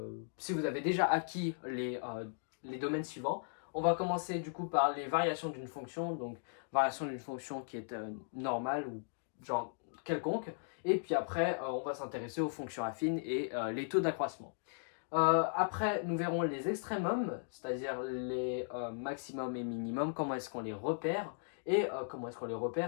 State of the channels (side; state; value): right; silent; digital silence